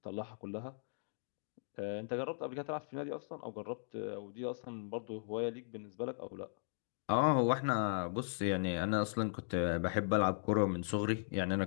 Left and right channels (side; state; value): right; silent; digital silence